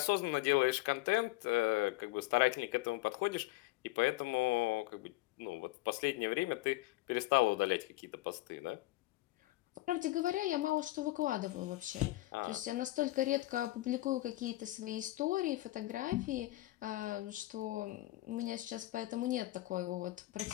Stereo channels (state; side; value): quieter; right; 18.5 dB